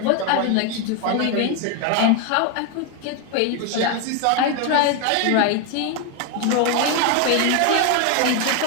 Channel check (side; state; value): both; different; correlation 0.01